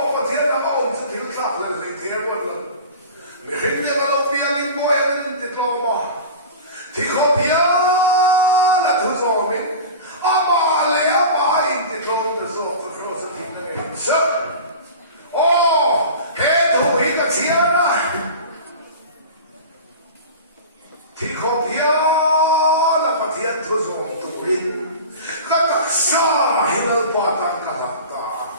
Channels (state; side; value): inverted; both; correlation -0.33